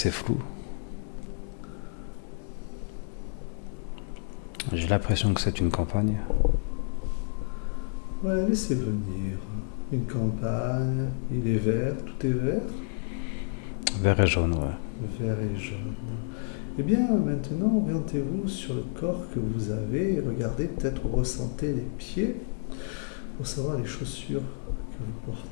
flou. J'ai l'impression que c'est une campagne. Ouais, laissez venir. Une campagne, il est vert, tout est vert, Vert et jaune, ouais. vert et jaune. Eh bien, maintenant, orientez-vous sur le corps que vous avez et regardez, peut-être ressentez les pieds pour savoir les chaussures que vous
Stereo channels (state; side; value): silent; right; 58 dB below the other